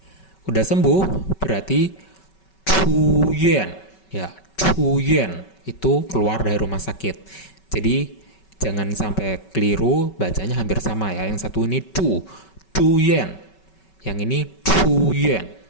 Udah sembuh berarti zhuyuan, ya. Zhuyuan itu keluar dari rumah sakit. Jadi jangan sampai keliru, bacanya hampir sama ya. Yang satu ini zhuyuan. Yang ini zhuyuan.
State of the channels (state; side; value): late; right; 5.3 ms